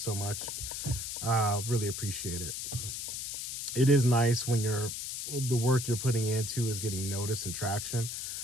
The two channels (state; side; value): noise; left; hiss, 5 dB below the sound